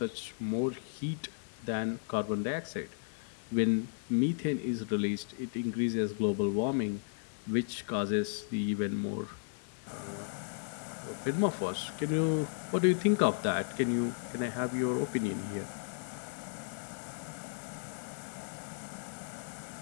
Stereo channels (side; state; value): right; silent; digital silence